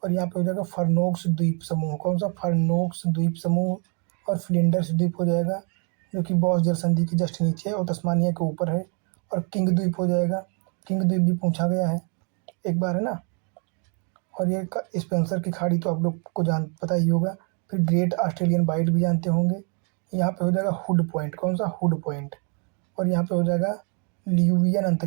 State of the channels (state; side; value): quieter; left; 38.2 dB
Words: और यहाँ पे हो जाएगा फरनोक्स द्वीप समूह, कौन सा, फरनोक्स द्वीप समूह। और फ्लिंडर्स द्वीप हो जाएगा, जो कि बॉस जल संधि के जस्ट नीचे है और तस्मानिया के ऊपर है। और किंग द्वीप हो जाएगा, किंग द्वीप भी पूछा गया है एक बार है ना। और ये स्पेंसर की खाड़ी तो आप लोग को पता ही होगा। फिर ग्रेट ऑस्ट्रेलियन बाइट भी जानते होंगे। यहाँ पे हो जाएगा हुड पॉइंट, कौन सा, हुड पॉइंट। और यहाँ पे हो जाएगा ल्यूवियन